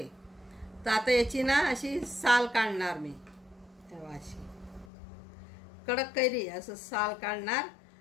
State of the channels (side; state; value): right; drops out; at 4.9 s